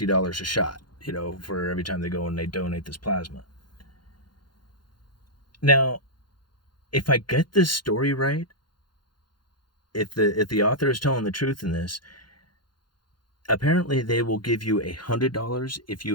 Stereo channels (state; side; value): late; right; 0.71 ms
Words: a shot, for every time they go and they donate this plasma. Now, if I get this story right, if the author is telling the truth in this, apparently they will give you $100 if